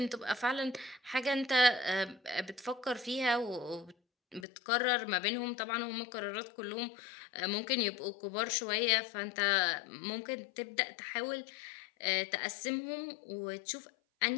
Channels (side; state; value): right; drops out; at 4.5 s